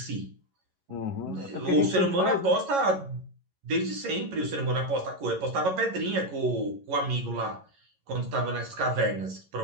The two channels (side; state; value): left; late; 11 ms